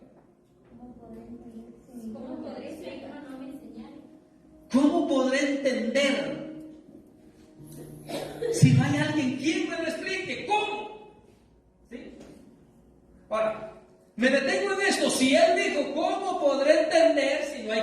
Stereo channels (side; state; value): both; identical; correlation 1.00